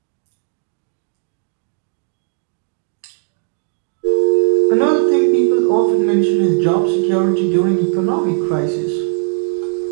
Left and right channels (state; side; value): silent; left; digital silence